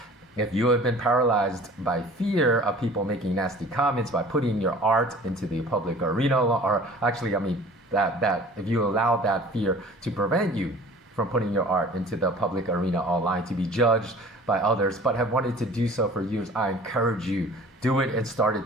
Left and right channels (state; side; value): normal; both; correlation 0.46